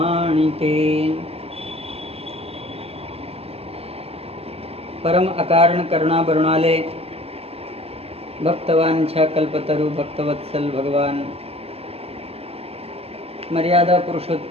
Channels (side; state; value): left; late; 0.29 ms